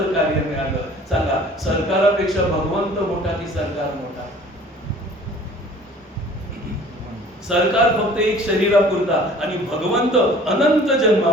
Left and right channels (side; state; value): both; normal; correlation 0.49